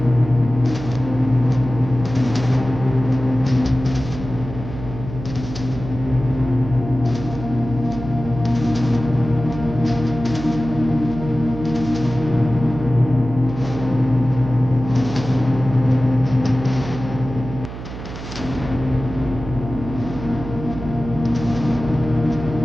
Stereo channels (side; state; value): right; noise; hum, 10 dB below the sound